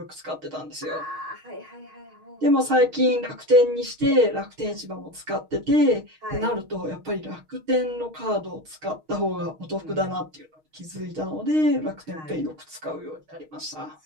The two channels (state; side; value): late; left; 6.4 ms